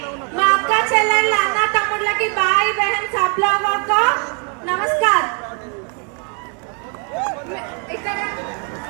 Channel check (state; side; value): quieter; left; 38.8 dB